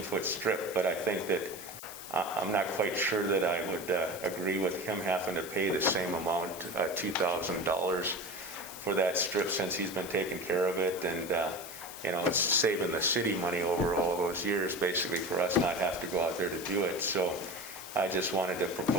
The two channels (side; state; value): left; noise; hiss, 13 dB below the sound